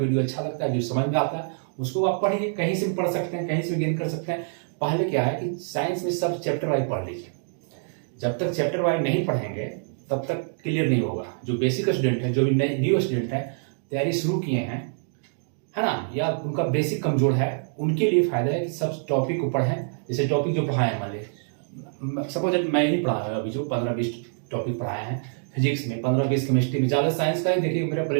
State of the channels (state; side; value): silent; left; digital silence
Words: अच्छा लगता है, जो समझ में आता है उसको आप पढ़िए। कहीं से भी पढ़ सकते हैं, कहीं से भी गेन कर सकते हैं। पहले क्या है कि साइंस में सब चैप्टर वाइज पढ़ लीजिए। जब तक चैप्टर वाइज नहीं पढ़ेंगे तब तक क्लियर नहीं होगा। जो बेसिक स्टूडेंट है, जो भी न्यू स्टूडेंट है, तैयारी शुरू किए हैं, है ना, या उनका बेसिक कमजोर है, उनके लिए फायदा है कि सब टॉपिक को पढ़ें। जैसे टॉपिक जो पढ़ाए हैं, मान लीजिए सपोज मैं ही पढ़ाया अभी, जो 15-20 टॉपिक पढ़ाए हैं फिजिक्स में, 15-20 केमिस्ट्री में, ज़्यादा साइंस का ही देखिए मेरा